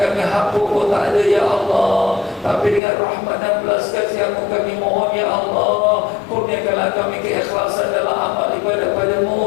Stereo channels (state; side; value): drops out; right; at 2.8 s